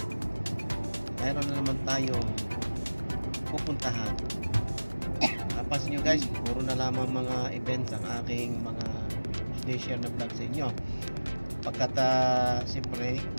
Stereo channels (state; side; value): inverted; both; correlation -1.00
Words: mayroon na naman tayong pupuntahan. Napas nyo guys, puro na lamang mga events ang aking mga share na vlog sa inyo. Pagkat siyempre